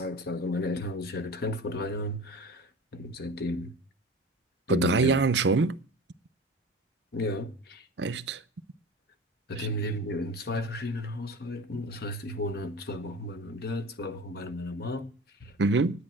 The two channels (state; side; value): normal; both; correlation 0.35